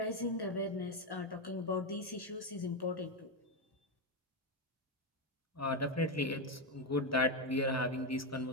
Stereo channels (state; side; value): normal; both; correlation 0.08